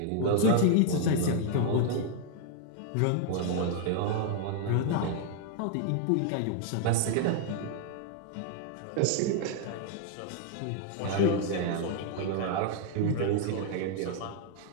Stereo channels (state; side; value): different; both; correlation 0.00